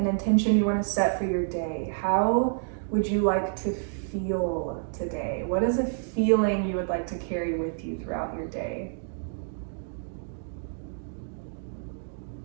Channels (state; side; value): silent; left; digital silence